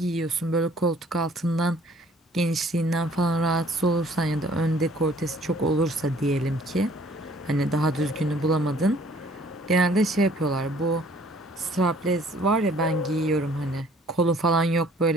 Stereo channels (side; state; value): both; normal; correlation 0.57